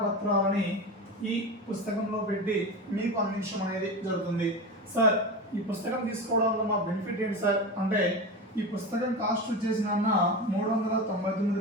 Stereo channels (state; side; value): normal; both; correlation 0.24